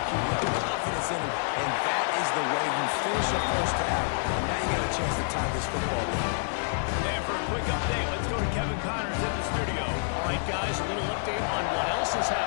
You have confidence in him, and that is the way you finish a first half. And now you got a chance to tie this football game. And for a quick update, let's go to Kevin Connors in the studio. All right, guys, a little update on what else is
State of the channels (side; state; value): right; silent; 59 dB below the other